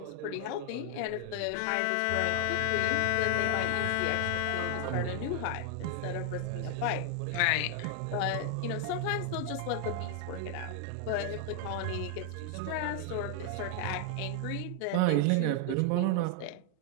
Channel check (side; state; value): both; different; correlation 0.00